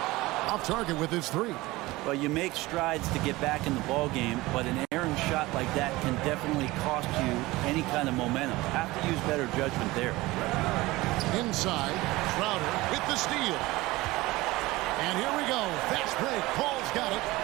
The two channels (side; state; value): left; quieter; 19.9 dB